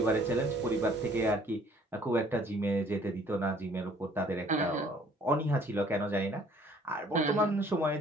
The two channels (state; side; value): normal; both; correlation 0.58